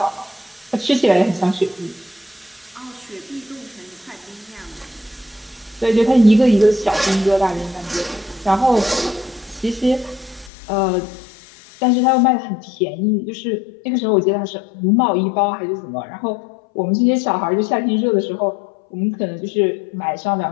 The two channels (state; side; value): drops out; right; at 10.5 s